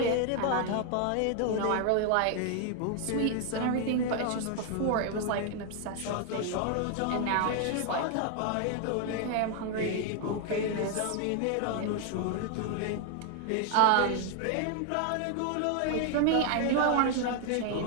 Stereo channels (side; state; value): both; different; correlation 0.00